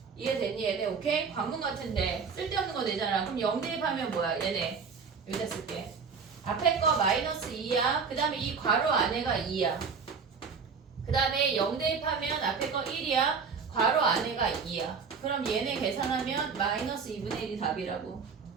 이해됐니 얘네? 오케이? 관문 같은데 쓸데없는 거 내잖아 그럼 0 대입하면 뭐야 얘네 여기다 쓸게 앞에 거 마이너스 2야 그 다음에 이 괄호 안에가 2야 그 다음에 0 대입하면 앞에 거 1이야 괄호 안에가 2야 그럼 얘네 계산하면 마이너스 2분의 1이 답이라고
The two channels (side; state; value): left; quieter; 5.6 dB